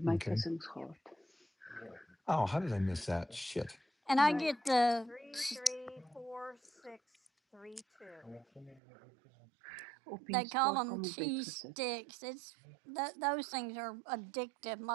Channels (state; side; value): drops out; left; at 8.8 s